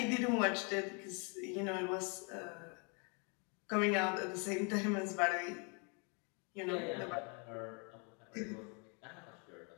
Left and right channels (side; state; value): right; quieter; 35.0 dB